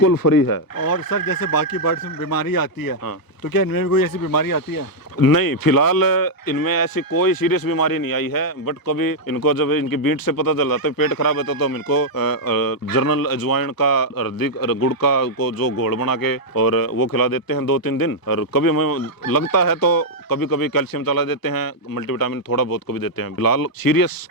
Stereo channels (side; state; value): right; late; 1.0 ms